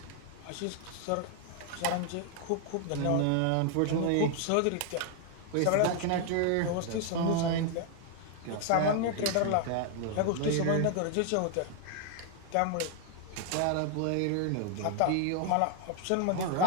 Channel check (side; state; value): both; different; correlation 0.01